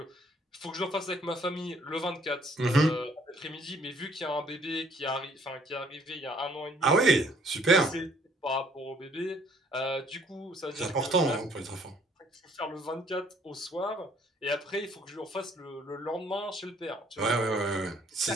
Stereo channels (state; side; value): normal; both; correlation 0.61